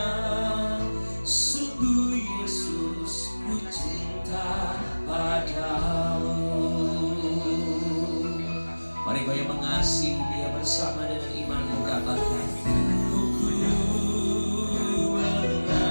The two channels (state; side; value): inverted; both; correlation -1.00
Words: Sungguh Yesus, ku cinta padamu. Mari kau yang mengasihi Dia bersama dengan imanmu katakan, ku